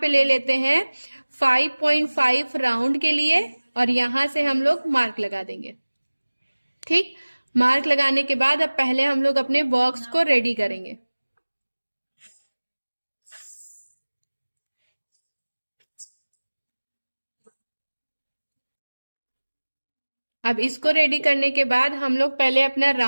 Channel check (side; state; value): both; inverted; correlation -1.00